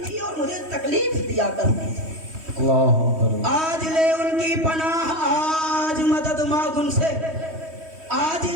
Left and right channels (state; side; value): late; left; 3.1 ms